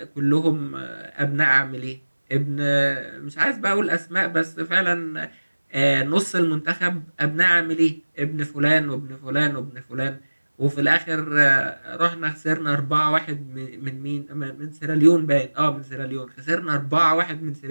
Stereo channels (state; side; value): inverted; both; correlation -1.00